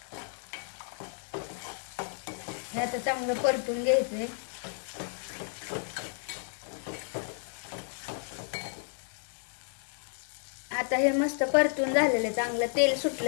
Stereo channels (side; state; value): right; silent; 57 dB below the other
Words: हे आता चांगलं परतून घ्यायचंय. आता हे मस्त परतून झालेलं, चांगलं तेल